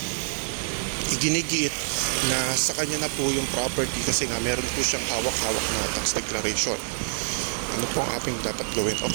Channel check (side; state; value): left; silent; digital silence